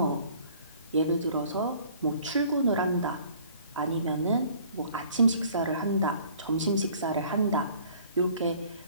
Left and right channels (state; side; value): inverted; both; correlation -0.54